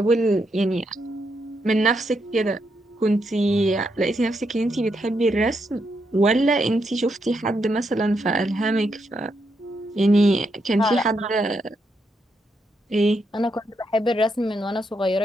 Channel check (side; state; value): both; normal; correlation 0.80